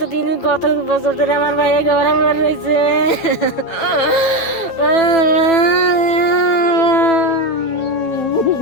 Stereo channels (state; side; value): late; right; 9.1 ms